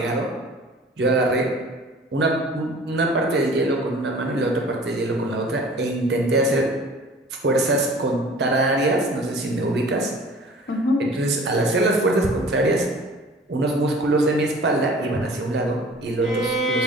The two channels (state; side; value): normal; both; correlation 0.46